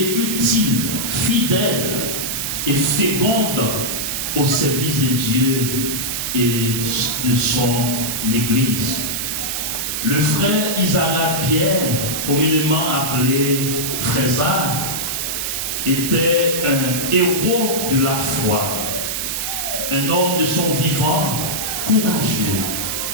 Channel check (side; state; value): right; noise; hiss, 2 dB below the sound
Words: utile, fidèle et féconde au service de Dieu et de son Église. Le frère Isaac Pierre, communément appelé Frésard, était un héros de la foi, un homme de son vivant, courageux,